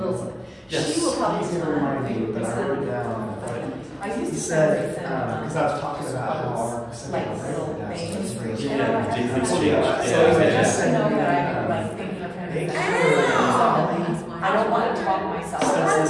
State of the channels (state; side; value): identical; both; correlation 1.00